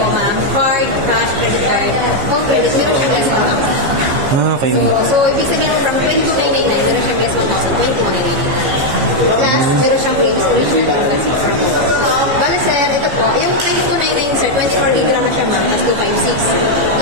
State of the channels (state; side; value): late; left; 15 ms